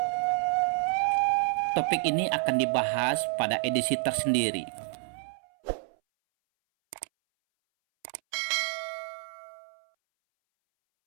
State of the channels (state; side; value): silent; left; 59 dB below the other